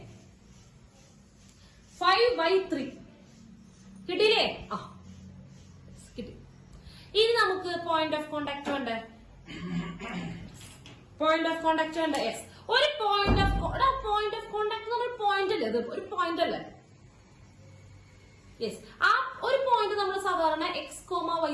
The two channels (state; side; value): identical; both; correlation 1.00